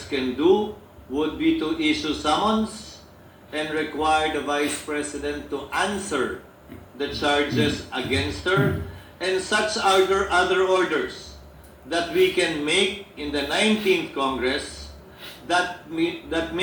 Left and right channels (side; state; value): both; identical; correlation 1.00